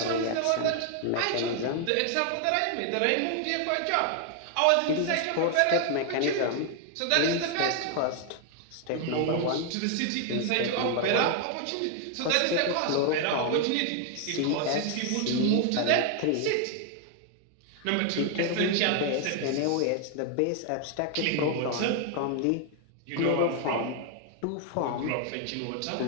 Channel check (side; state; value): both; different; correlation 0.00